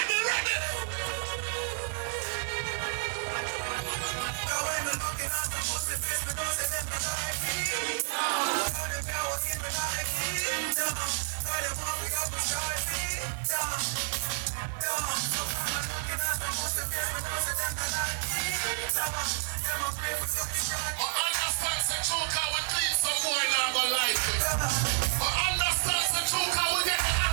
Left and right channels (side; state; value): left; silent; digital silence